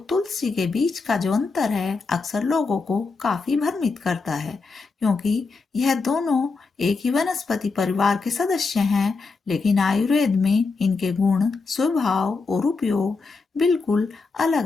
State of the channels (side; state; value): right; quieter; 4.2 dB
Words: तुलसी के बीच का जो अंतर है अक्सर लोगों को काफी भ्रमित करता है, क्योंकि यह दोनों एक ही वनस्पति परिवार के सदस्य हैं, लेकिन आयुर्वेद में इनके गुण, स्वभाव और उपयोग बिल्कुल अलग